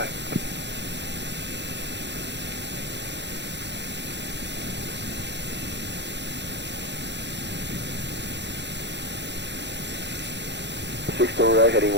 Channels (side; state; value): left; late; 0.51 ms